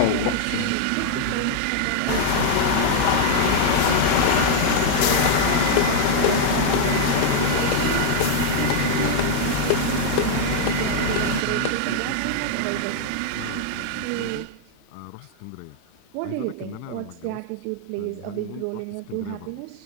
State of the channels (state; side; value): different; both; correlation 0.00